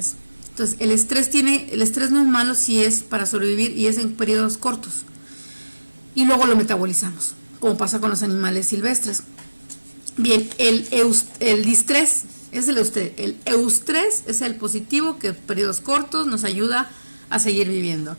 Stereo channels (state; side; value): inverted; both; correlation -1.00